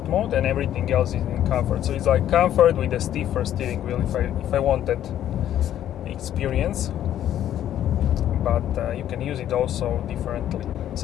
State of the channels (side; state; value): right; quieter; 11.3 dB